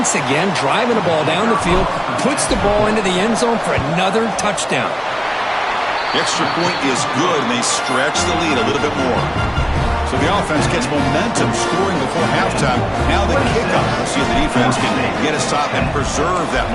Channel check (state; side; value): identical; both; correlation 1.00